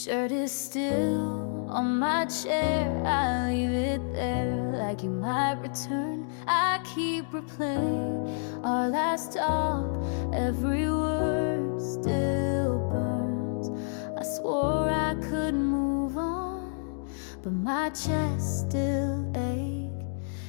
is still on my chair. I leave it there like you might return. I keep replaying our last talk. Every word still burns. I swore I could move on, but my chest still aches.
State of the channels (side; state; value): right; silent; digital silence